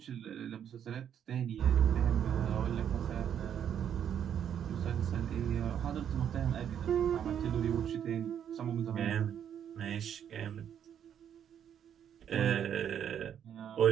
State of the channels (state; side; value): quieter; left; 9.1 dB